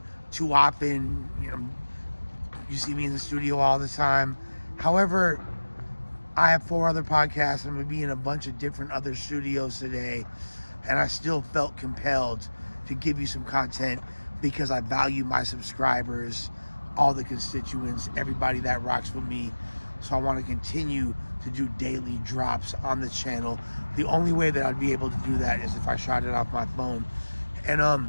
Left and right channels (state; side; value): inverted; both; correlation -1.00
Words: too often. You see me in the studio all the time. However, I have 4 other podcasts. I'm going to be in a bunch of different other studios today, and I still felt compelled to give you some content because I value my subscribers, all the constituents, everybody that rocks with me. So I want to continue to do daily drops on the channel. The only way that I'd be able to do that is if I shot it off my phone.